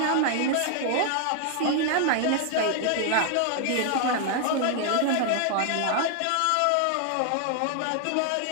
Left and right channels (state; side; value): different; both; correlation 0.00